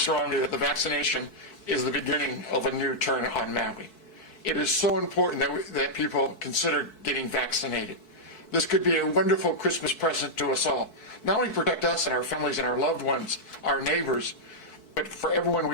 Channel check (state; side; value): late; right; 4.6 ms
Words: that the vaccination is the beginning of a new turn on Maui. It is so important that people consider getting vaccinated. This could be a wonderful Christmas present to us all. Not only protect us and our families and our loved ones, our neighbors, but for everyone